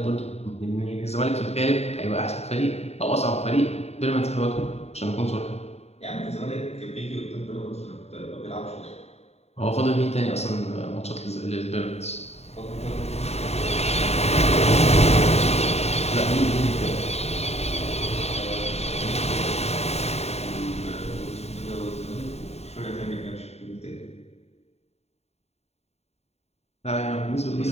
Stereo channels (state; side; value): late; right; 0.31 ms